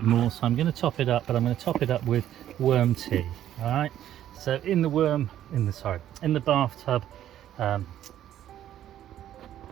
more, so I'm going to top it up, but I'm going to top it up with worm tea. All right. So in the bathtub.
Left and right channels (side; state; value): left; quieter; 11.6 dB